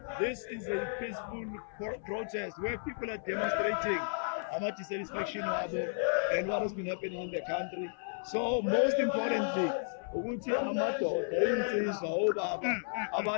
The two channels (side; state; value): right; silent; 55 dB below the other